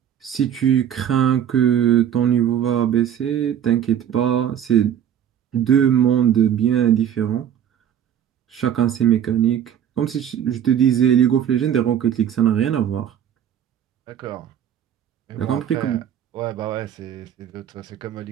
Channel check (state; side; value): quieter; left; 9.6 dB